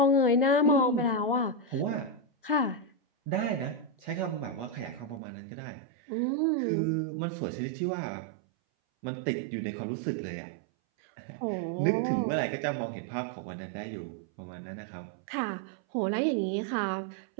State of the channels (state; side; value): drops out; left; at 5.2 s